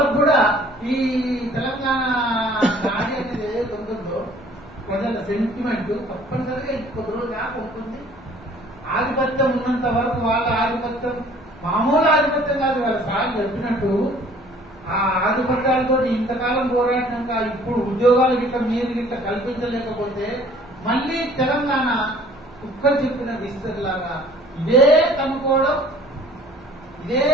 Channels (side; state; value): both; normal; correlation 0.54